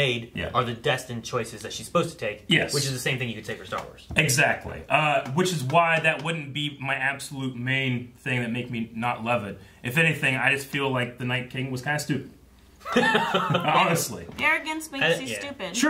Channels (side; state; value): both; identical; correlation 1.00